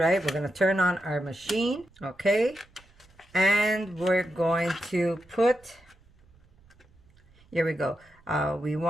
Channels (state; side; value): noise; right; rumble, 30 dB below the sound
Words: We're going to turn on our machine. Okay. And we're going to put, here we go. We